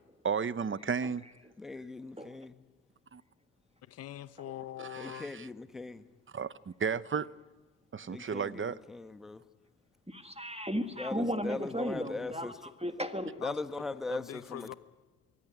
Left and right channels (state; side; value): normal; both; correlation 0.40